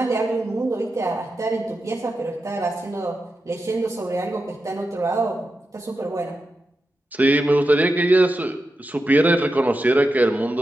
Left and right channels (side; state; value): both; normal; correlation 0.89